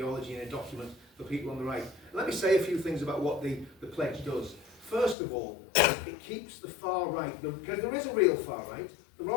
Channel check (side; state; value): right; drops out; at 5.2 s